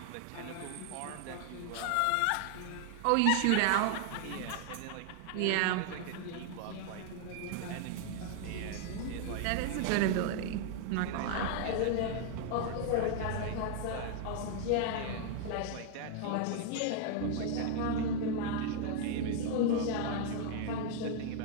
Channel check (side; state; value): both; different; correlation 0.00